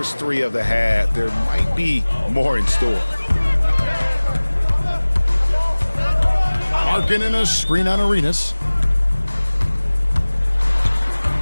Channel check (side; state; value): both; inverted; correlation -1.00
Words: 3 of the half, there might be more in store. Markkanen a screen on Arenas.